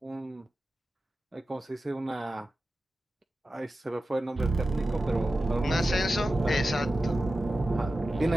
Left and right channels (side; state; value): both; normal; correlation 0.94